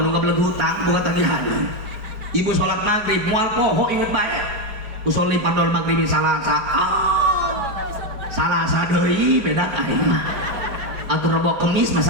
nu gabeleg hutang boga tagihan ibu salat maghrib moal poho inget bae usul li padol maghrib salasa salasa deui beda tah mah atur rebo kemis masa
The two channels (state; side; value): late; left; 4.9 ms